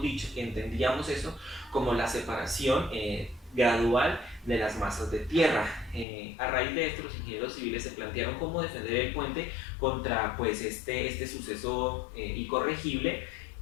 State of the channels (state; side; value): drops out; right; at 6.1 s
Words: dicho que entendíamos eso como la separación gradual de las masas de tierra. A raíz de esto, los ingenieros civiles se plantearon cómo defender el puente contra pues, este suceso incorregible,